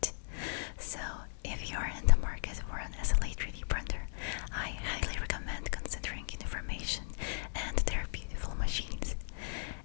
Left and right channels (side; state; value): right; silent; digital silence